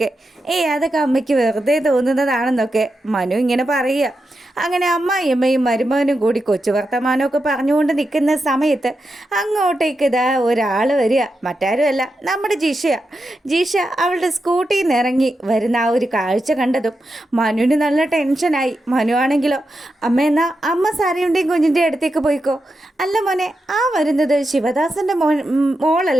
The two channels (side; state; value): both; normal; correlation 0.88